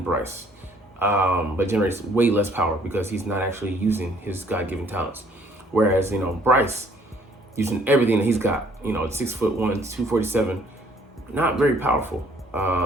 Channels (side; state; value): both; normal; correlation 0.61